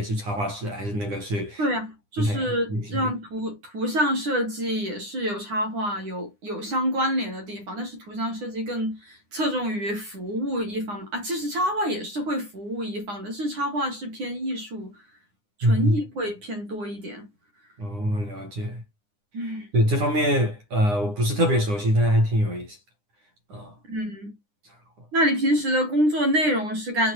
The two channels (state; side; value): late; left; 9.8 ms